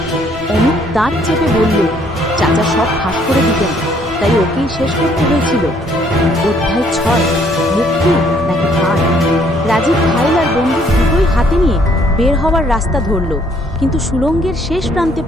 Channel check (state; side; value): normal; both; correlation 0.65